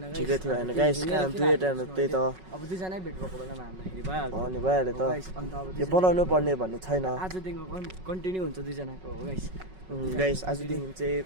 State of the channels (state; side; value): late; left; 5.4 ms